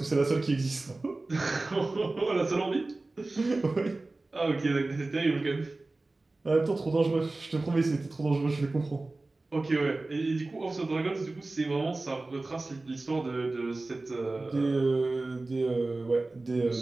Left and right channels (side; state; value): left; quieter; 3.2 dB